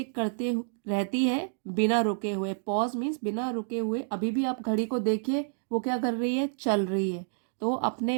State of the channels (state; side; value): silent; left; digital silence